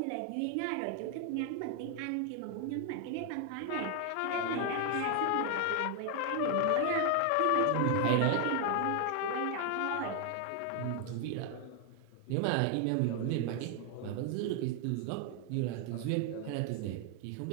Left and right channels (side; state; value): both; different; correlation 0.00